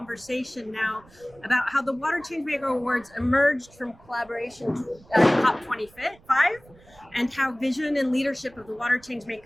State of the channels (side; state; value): right; noise; rumble, 26 dB below the sound